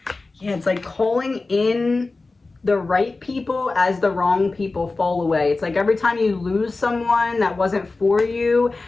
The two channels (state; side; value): quieter; right; 3.5 dB